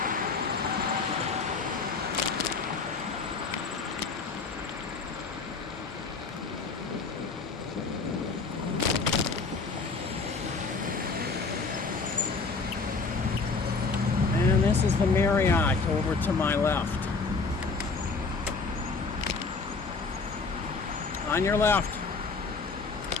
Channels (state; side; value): quieter; right; 4.3 dB